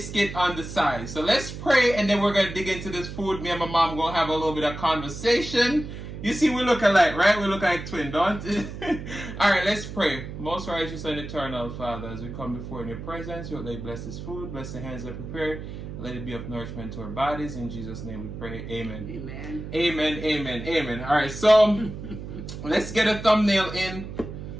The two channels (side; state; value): right; noise; hum, 9 dB below the sound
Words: on the side. So let's pray, and then we're going to dig into this food. Me and my mom going to have a little bit of conversation. You see, we look alike, right? We look like twins, don't we? All right, let's pray. Most righteous and eternal Father, as we come before in your presence, you let bless this food, bless the hands that prepare, let it be of nourishment to our bodies. In Jesus' name we pray. Amen. Amen. Amen, amen, amen. All right, so let's get a thumbnail in.